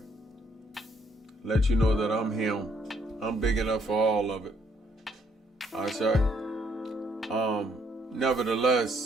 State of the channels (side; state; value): both; normal; correlation 0.69